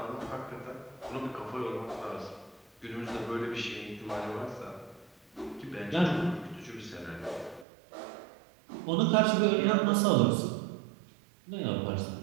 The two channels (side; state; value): left; drops out; at 7.7 s